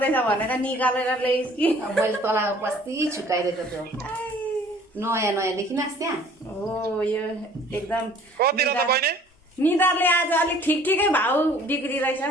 भनेर निकालेर ल्याइस् कि मैले तँलाई बस्ती छुकाइदिएको थियो नयाँ नयाँ देखिनस् त्यहाँ हो यो एकदम कति रहेछ बहिनी निधारले आज अलिक ठिकै भाउ बिग्रिरहेछ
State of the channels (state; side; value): normal; both; correlation 0.53